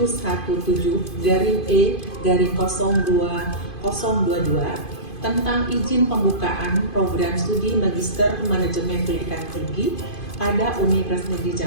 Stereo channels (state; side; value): late; right; 2.5 ms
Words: tentang izin pembukaan program studi Magister Manajemen Pendidikan Tinggi pada Universitas Negeri